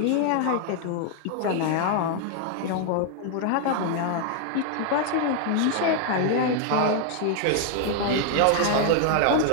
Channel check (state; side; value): different; both; correlation 0.00